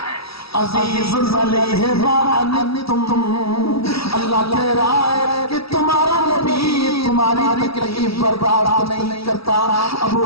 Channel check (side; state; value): right; late; 0.76 ms